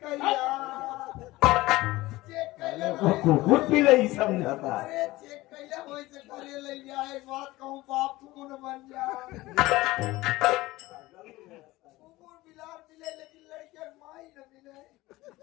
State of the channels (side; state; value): right; quieter; 18.9 dB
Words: कुकुर पिलई समझाता अरे चेक कैला होई से करे ले गया एक बात कहूं बाप तू न बन जा कुकुर बिलार मिले लेकिन